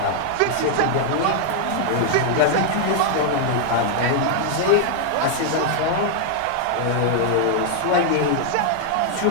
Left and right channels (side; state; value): both; different; correlation 0.00